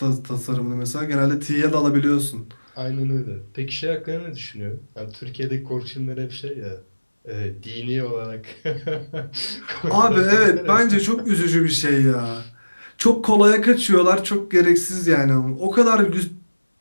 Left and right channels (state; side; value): inverted; both; correlation -1.00